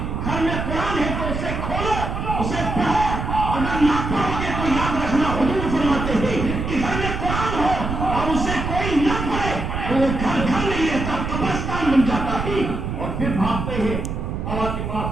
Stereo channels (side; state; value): right; noise; rumble, 3 dB below the sound